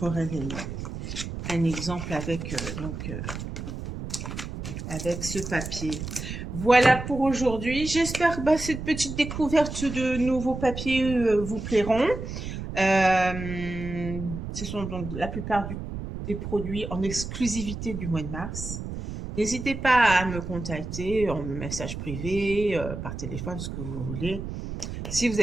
un exemple avec avec ce papier. Voilà pour aujourd'hui. J'espère que cette petite découverte de nouveaux papiers vous plairont. Ce sont donc la plupart des produits en exclusivité du mois de mars. N'hésitez pas à me contacter en message privé, par téléphone, ce que vous voulez, si vous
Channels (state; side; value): noise; right; rumble, 7 dB below the sound